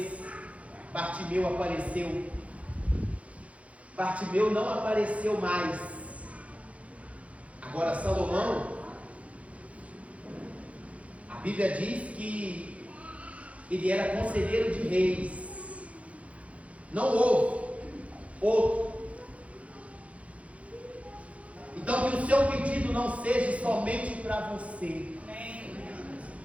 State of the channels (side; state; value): left; late; 0.065 ms